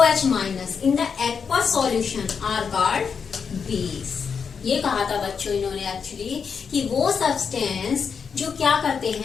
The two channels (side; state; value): right; quieter; 6.2 dB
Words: minus in the aqueous solution are called base. ये कहा था बच्चों इन्होंने एक्चुअली कि वो सब्सटेंस जो क्या करते